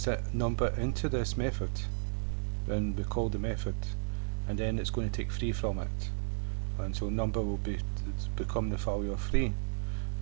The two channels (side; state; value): left; silent; digital silence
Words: that number into this method when we call the method, and then it's going to take 3 from it, and so number will become the value of 3,